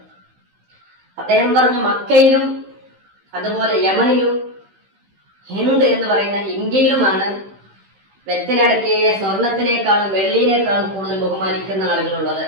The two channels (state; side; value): late; left; 15 ms